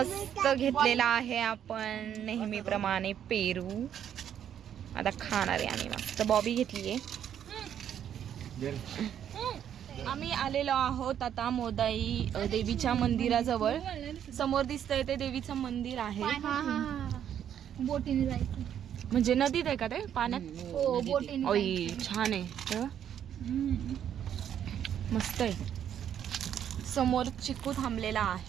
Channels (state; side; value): quieter; left; 9.6 dB